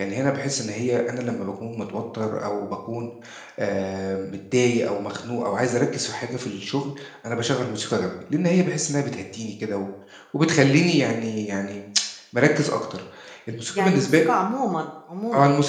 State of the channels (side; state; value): both; identical; correlation 1.00